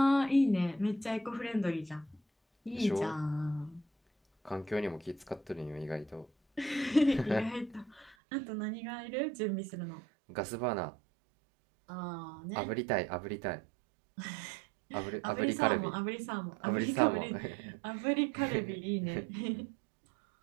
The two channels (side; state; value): left; drops out; at 8.2 s